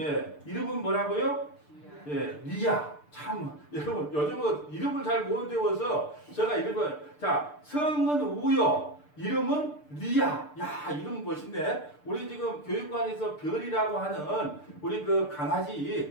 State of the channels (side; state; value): right; late; 6.7 ms